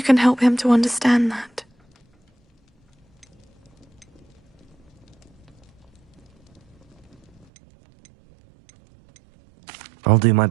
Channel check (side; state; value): left; drops out; at 7.5 s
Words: can help him to understand that. I'll do my